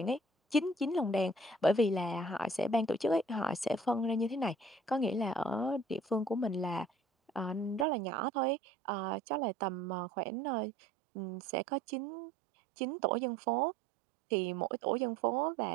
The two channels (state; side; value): drops out; left; at 7.9 s